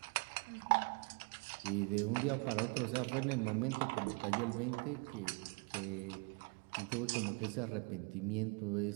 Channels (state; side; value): quieter; left; 31.5 dB